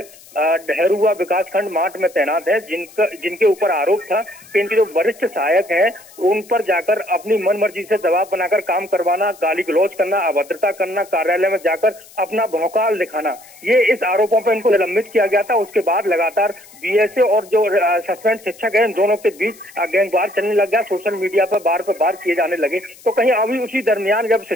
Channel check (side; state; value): left; noise; hiss, 23 dB below the sound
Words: डहरुआ विकास खंड माट में तैनात है, जिनके ऊपर आरोप था कि इनके जो वरिष्ठ सहायक हैं उन पर जाकर अपनी मनमर्जी से दबाव बनाकर काम करवाना, गाली गलौज करना, अभद्रता करना, कार्यालय में जाकर अपना भौकाल दिखाना, ये इस आरोपों पर इनको निलंबित किया गया था। उसके बाद लगातार बीएसए और जो सस्पेंड शिक्षक है इन दोनों के बीच गैंगवार चलने लग गया, सोशल मीडिया पर बार किए जाने लगे। तो कहीं अभी उसी दरमियान जब